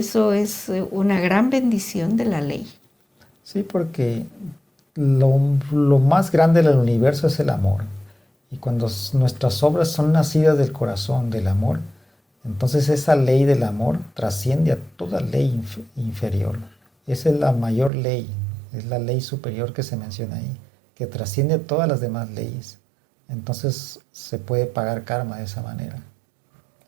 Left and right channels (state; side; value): drops out; left; at 17.9 s